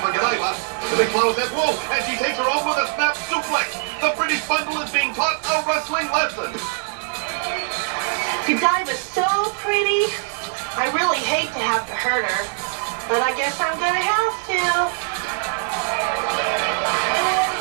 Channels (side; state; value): left; silent; 64 dB below the other